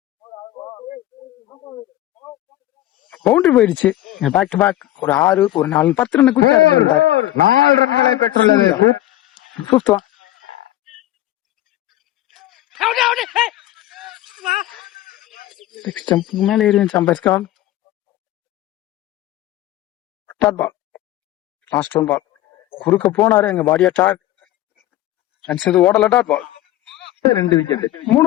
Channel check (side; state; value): right; quieter; 14.5 dB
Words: பவுண்டரி போயிடுச்சு. பேக் டு பேக் ஒரு 6 ஒரு 4 10 ரன் குயிக்கா எடுத்துட்டாரு. 4 ரன்களை பெற்றுள்ளது. ஃபிஃப்த் ஒன் ஸ்டம்புக்கு மேல ஏறி umpire call. Dot ball last one ball குறுக்க போனாரு. எங்க பாடியா டாட் ரன்ஸ் எது ஓடல. டாட் பால் 2 விக்கெட்